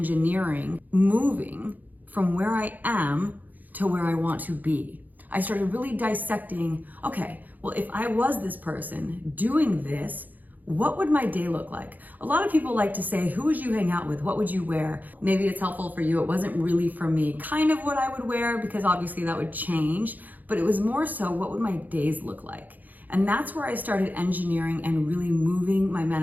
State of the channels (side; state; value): left; late; 0.083 ms